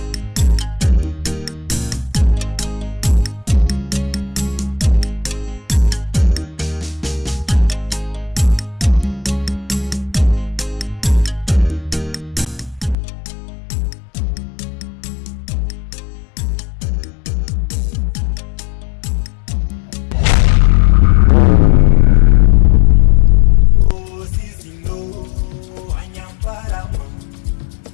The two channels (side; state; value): right; drops out; at 13.0 s